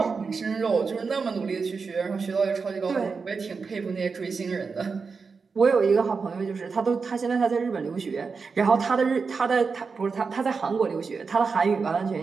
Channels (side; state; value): left; quieter; 5.0 dB